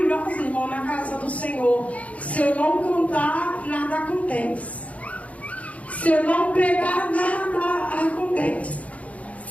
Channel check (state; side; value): late; right; 0.067 ms